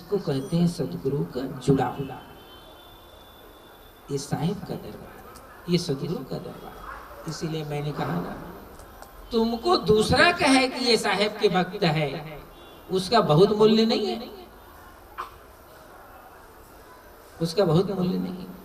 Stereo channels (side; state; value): both; identical; correlation 1.00